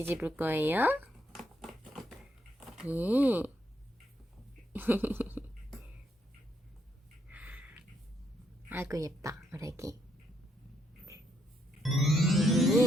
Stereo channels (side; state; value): both; normal; correlation 0.75